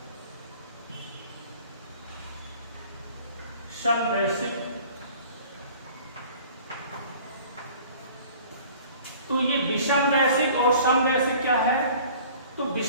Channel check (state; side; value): inverted; both; correlation -0.48